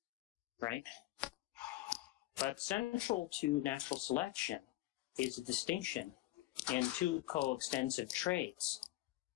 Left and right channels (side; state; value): right; quieter; 16.8 dB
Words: right? But central to natural selection is a distinction in two coextensive traits